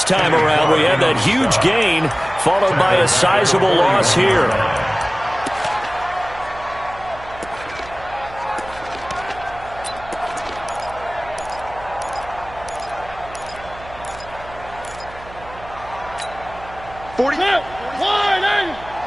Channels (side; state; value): right; noise; hum, 18 dB below the sound